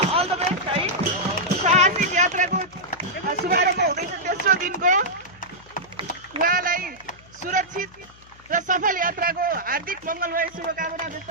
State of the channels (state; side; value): noise; left; hum, 25 dB below the sound